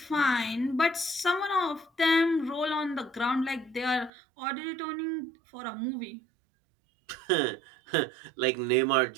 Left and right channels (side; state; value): left; drops out; at 4.1 s